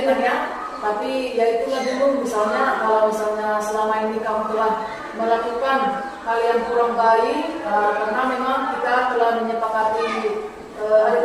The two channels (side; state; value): both; identical; correlation 1.00